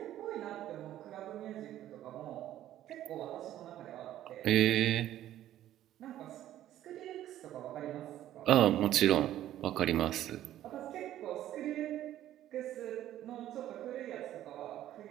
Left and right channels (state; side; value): quieter; left; 12.7 dB